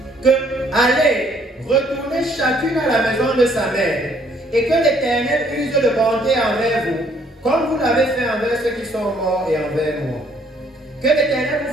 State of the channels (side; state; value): both; normal; correlation 0.64